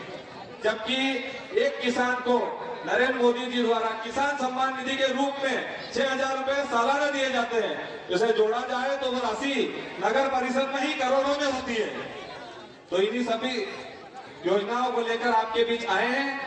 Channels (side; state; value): both; identical; correlation 1.00